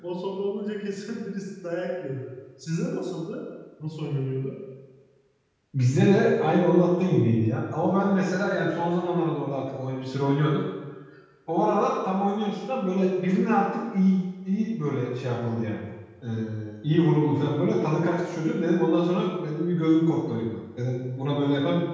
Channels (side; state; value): both; identical; correlation 1.00